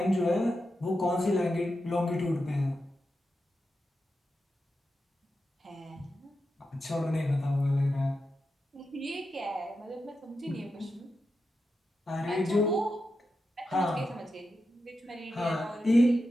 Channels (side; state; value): both; normal; correlation 0.89